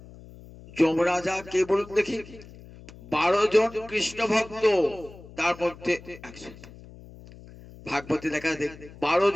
যমরাজা কে বলুন দেখি? 12 জন কৃষ্ণ ভক্ত, তার মধ্যে একজন ভাগবতে দেখা দেখ 12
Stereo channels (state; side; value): noise; left; hum, 19 dB below the sound